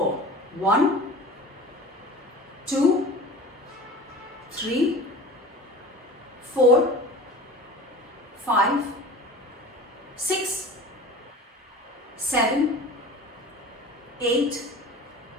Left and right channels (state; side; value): normal; both; correlation 0.38